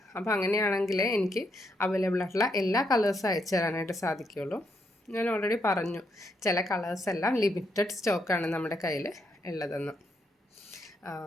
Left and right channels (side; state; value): both; normal; correlation 0.78